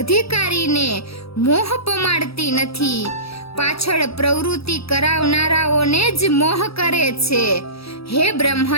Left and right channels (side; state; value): right; late; 0.77 ms